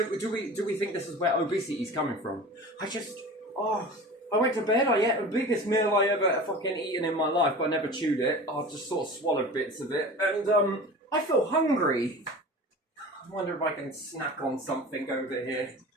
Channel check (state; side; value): normal; both; correlation 0.36